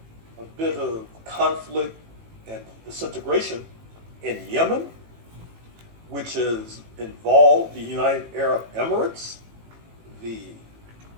a bit of conflict and disintegration in Yemen, which has involved the United Arab Emirates, the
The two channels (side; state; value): left; late; 18 ms